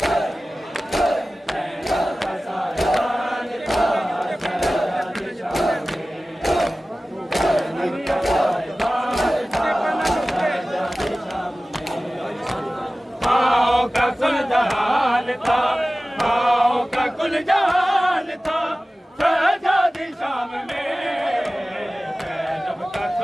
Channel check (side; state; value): both; normal; correlation 0.97